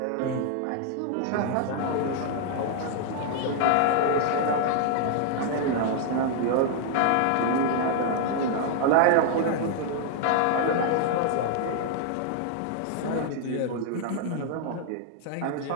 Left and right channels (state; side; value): different; both; correlation 0.00